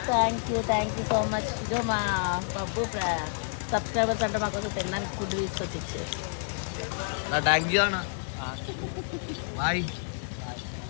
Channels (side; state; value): right; silent; 58 dB below the other